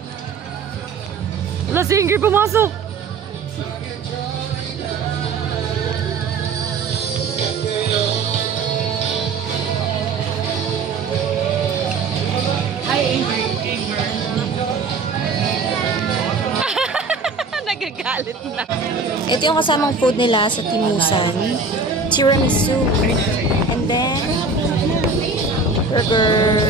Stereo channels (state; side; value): quieter; left; 4.3 dB